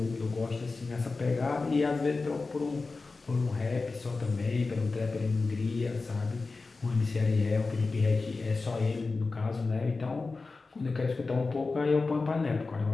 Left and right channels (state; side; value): quieter; right; 3.9 dB